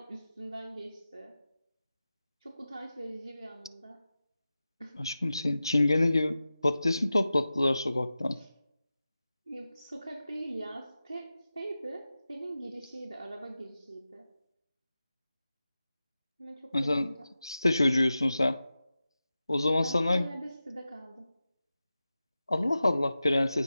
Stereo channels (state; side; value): inverted; both; correlation -0.94